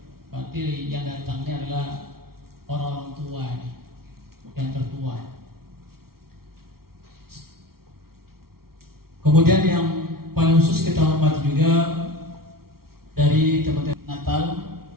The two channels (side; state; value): left; late; 0.94 ms